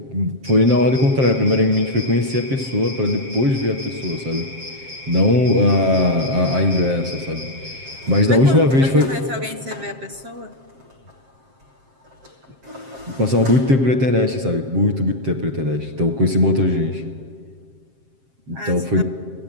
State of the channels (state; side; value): late; left; 7.6 ms